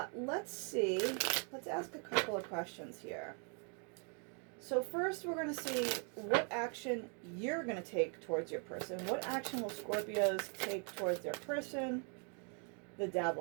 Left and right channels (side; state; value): left; quieter; 39.8 dB